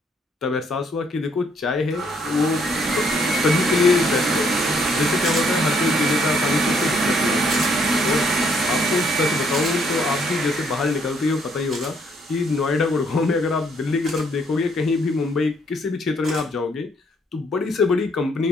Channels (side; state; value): both; normal; correlation 0.68